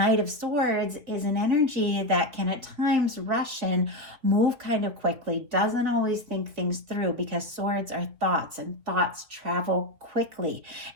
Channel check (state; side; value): late; left; 3.5 ms